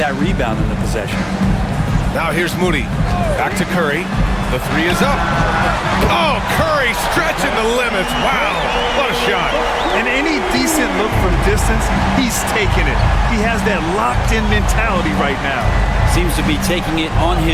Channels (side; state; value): both; identical; correlation 1.00